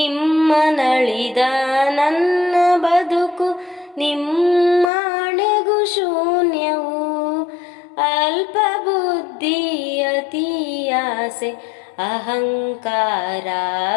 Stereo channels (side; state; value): right; drops out; at 4.9 s